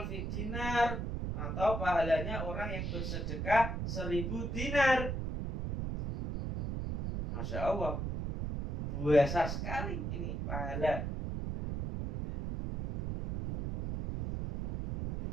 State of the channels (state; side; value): noise; right; rumble, 3 dB below the sound